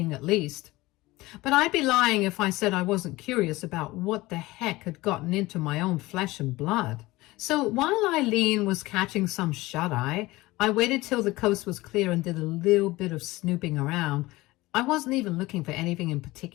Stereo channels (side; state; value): right; quieter; 19.8 dB